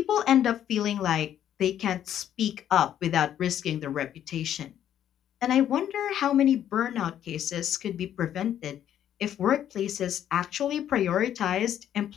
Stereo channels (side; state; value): right; quieter; 10.6 dB